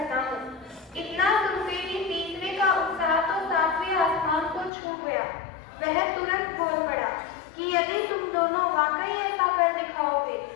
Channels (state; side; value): drops out; right; at 4.7 s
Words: हूँ। इतना सुनते ही तीसरे का उत्साह तो 7वें आसमान को छू गया। वह तुरंत बोल पड़ा कि यदि तुम दोनों वाकई ऐसा कर दिखाओगे